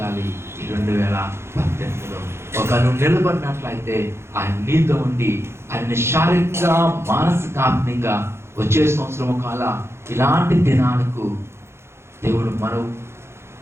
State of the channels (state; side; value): late; left; 0.12 ms